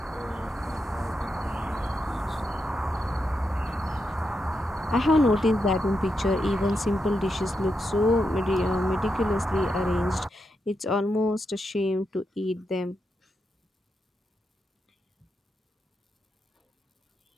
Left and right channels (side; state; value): both; normal; correlation 0.85